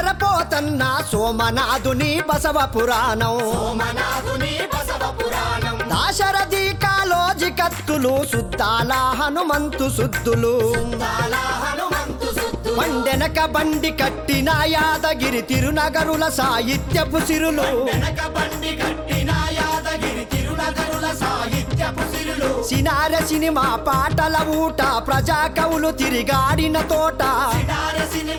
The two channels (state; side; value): identical; both; correlation 1.00